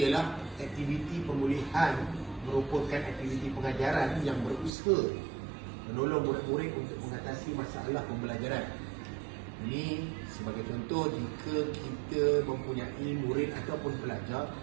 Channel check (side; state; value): left; drops out; at 4.7 s